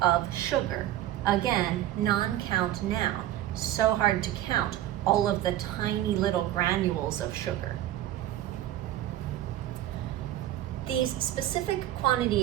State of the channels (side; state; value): left; quieter; 13.3 dB